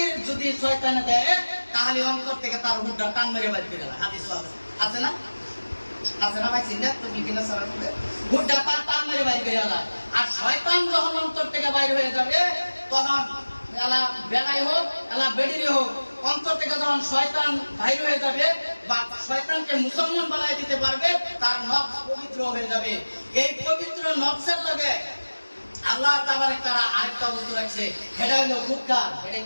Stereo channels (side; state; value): both; inverted; correlation -1.00